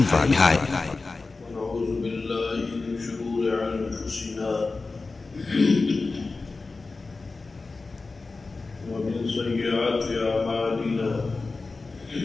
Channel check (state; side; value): quieter; right; 3.8 dB